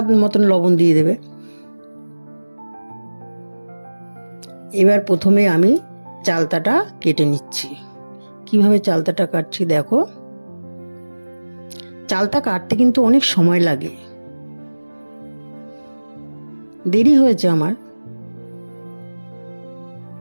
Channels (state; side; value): inverted; both; correlation -1.00